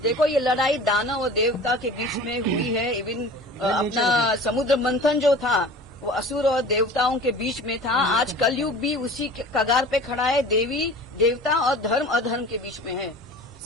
देखो ये लड़ाई दानव और देवता के बीच में हुई है। इवन अपना समुद्र मंथन जो था वो असुर और देवताओं के बीच में था। आज कलयुग भी उसी कगार पे खड़ा है। देवी देवता और धर्म अधर्म के बीच में है।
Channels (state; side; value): normal; both; correlation 0.40